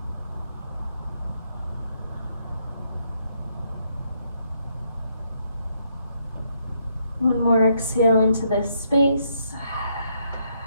One more exhale into this space.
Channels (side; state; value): both; inverted; correlation -0.74